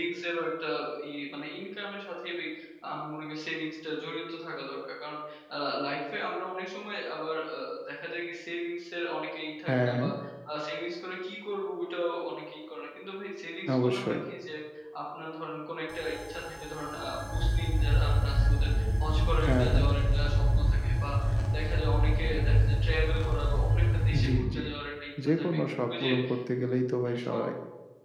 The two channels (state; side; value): identical; both; correlation 1.00